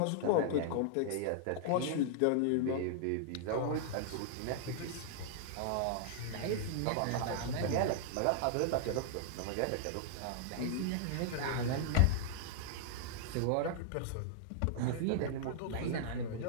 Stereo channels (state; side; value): different; both; correlation -0.01